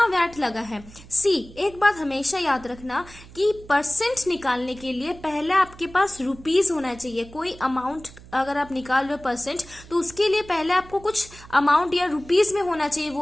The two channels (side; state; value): right; noise; hum, 20 dB below the sound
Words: वैट लगा है? सी, एक बात हमेशा याद रखना कि परसेंट निकालने के लिए पहले आपके पास रुपीज होना चाहिए। कोई अमाउंट अगर आप निकाल रहे हो परसेंट, तो उसके लिए पहले आपको कुछ अमाउंट या रुपीज में होना चाहिए वो